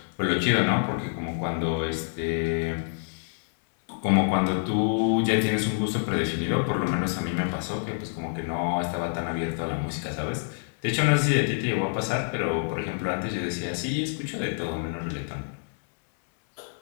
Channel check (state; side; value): silent; right; digital silence